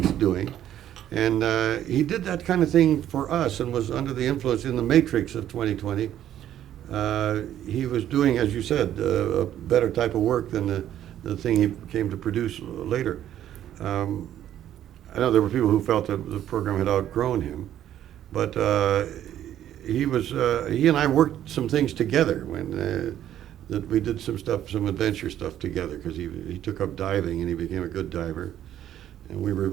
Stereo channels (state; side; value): quieter; left; 11.4 dB